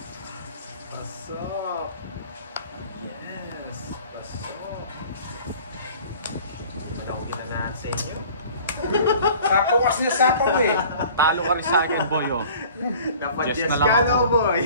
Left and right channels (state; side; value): inverted; both; correlation -0.47